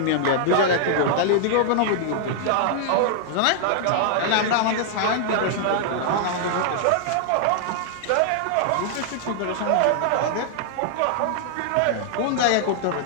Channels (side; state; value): both; different; correlation -0.01